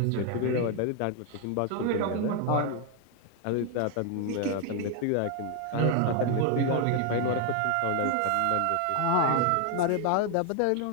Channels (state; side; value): different; both; correlation 0.00